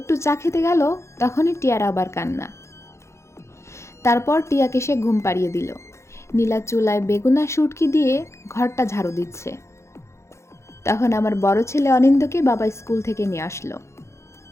চা খেতে গেল তখনই টিয়ার আবার কান্না। তারপর টিয়াকে সে ঘুম পাড়িয়ে দিল। নীলা চুলায় বেগুন আর শুটকি দিয়ে ঘরটা ঝাড়ু দিচ্ছে। তখন আমার বড় ছেলে অনিন্দকে বাবা স্কুল থেকে নিয়ে আসলো।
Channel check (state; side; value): late; right; 0.13 ms